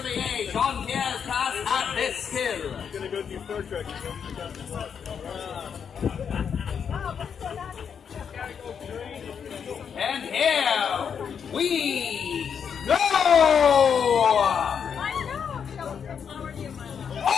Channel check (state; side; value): quieter; right; 7.2 dB